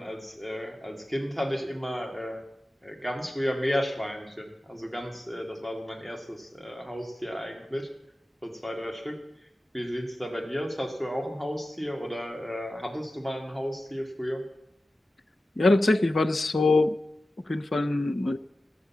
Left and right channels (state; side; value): normal; both; correlation 0.94